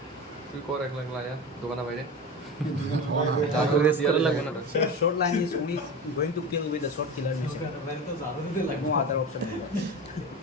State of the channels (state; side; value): normal; both; correlation 0.26